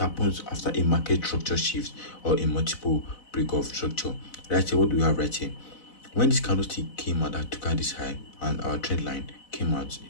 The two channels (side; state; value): right; late; 4.0 ms